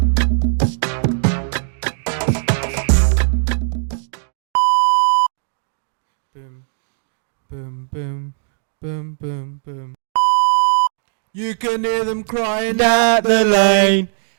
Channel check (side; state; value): left; silent; digital silence